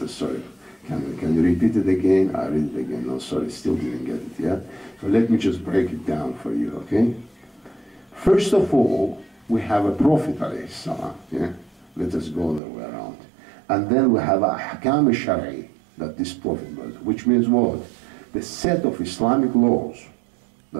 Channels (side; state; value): left; drops out; at 12.6 s